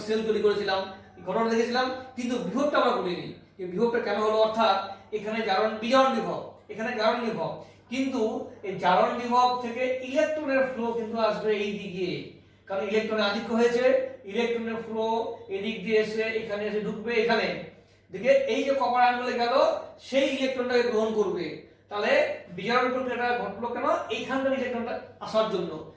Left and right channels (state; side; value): identical; both; correlation 1.00